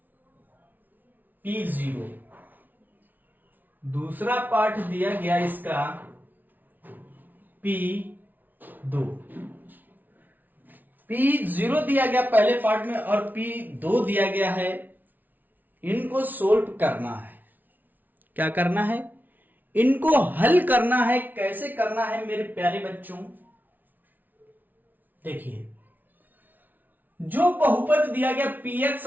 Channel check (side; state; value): left; late; 0.083 ms